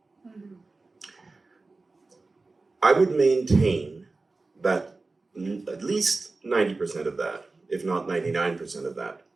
Mm-hmm. I would maintain that at least 90% of that, if not 99% of that,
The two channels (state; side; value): quieter; left; 3.6 dB